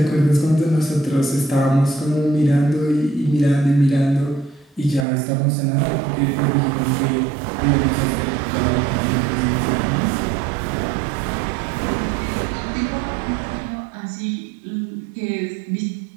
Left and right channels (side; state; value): left; drops out; at 5.1 s